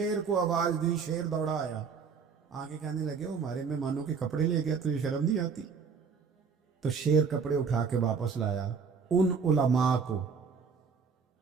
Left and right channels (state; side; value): quieter; left; 5.6 dB